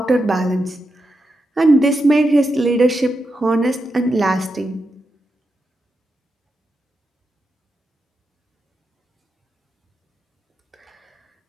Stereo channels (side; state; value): both; normal; correlation 0.87